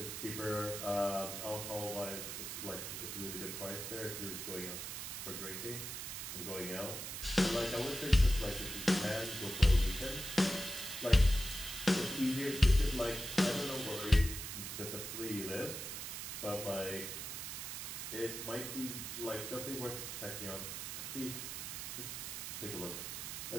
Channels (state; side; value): noise; right; hiss, 6 dB below the sound